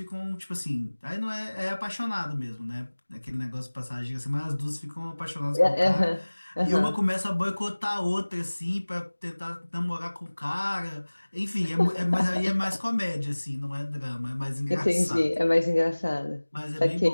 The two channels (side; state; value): both; inverted; correlation -1.00